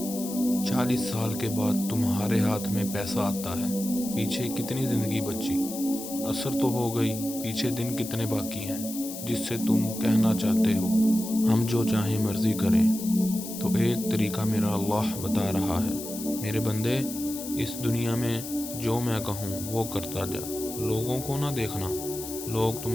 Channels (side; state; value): left; noise; hiss, 10 dB below the sound